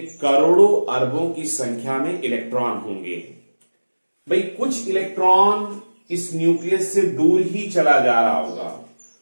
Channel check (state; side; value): inverted; both; correlation -1.00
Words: करोड़ों अरबों की संख्या में इलेक्ट्रॉन होंगे. भाई कुछ इलेक्ट्रॉन इस न्यूक्लियस से दूर ही चला जा रहा होगा,